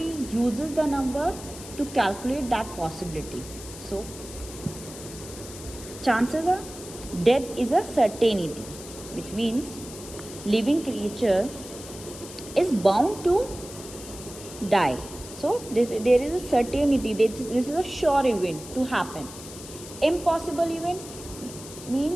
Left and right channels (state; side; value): noise; left; hiss, 14 dB below the sound